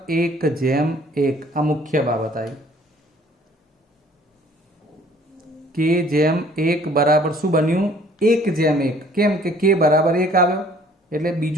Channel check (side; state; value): both; normal; correlation 0.56